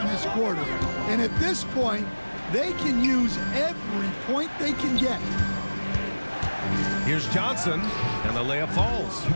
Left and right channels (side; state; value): both; inverted; correlation -1.00